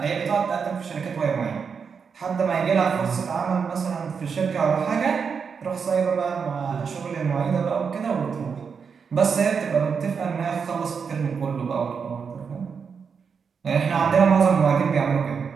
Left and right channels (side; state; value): left; quieter; 6.1 dB